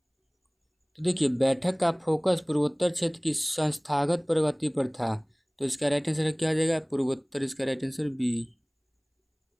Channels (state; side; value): identical; both; correlation 1.00